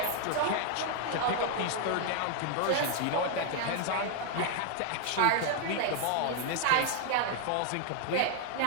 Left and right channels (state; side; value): different; both; correlation 0.00